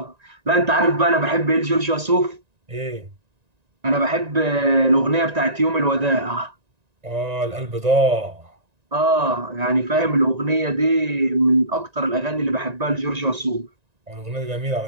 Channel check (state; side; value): late; left; 1.9 ms